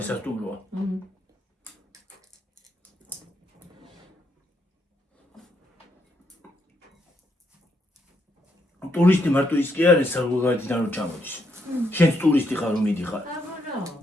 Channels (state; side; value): normal; both; correlation 0.76